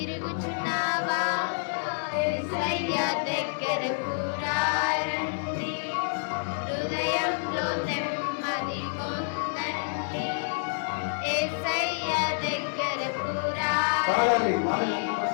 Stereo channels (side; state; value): right; silent; 59 dB below the other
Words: యేసయ్య దగ్గరకు రండి హృదయంలో నెమ్మది పొందండి యేసయ్య దగ్గరకు